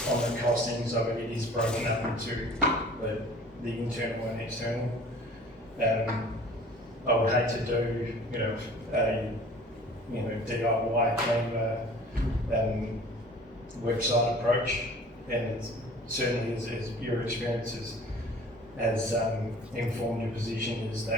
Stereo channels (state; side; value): normal; both; correlation 0.47